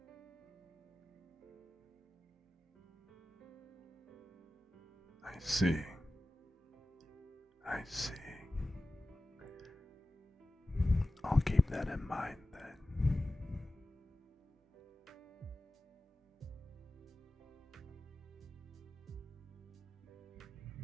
I see. I see. I'll keep that in mind then.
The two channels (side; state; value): both; normal; correlation 0.95